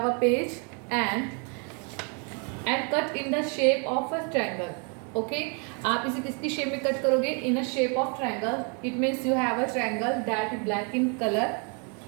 a page and cut in the shape of a triangle. Okay, आप इसे किसकी शेप में कट करोगे? In a shape of triangle. It means you have a triangle that is black in colour.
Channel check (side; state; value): left; quieter; 37.3 dB